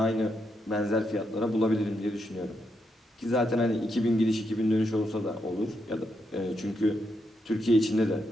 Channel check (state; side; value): normal; both; correlation 0.81